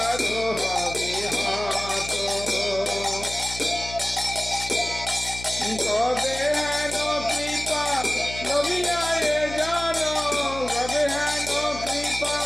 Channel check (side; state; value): left; noise; hum, 12 dB below the sound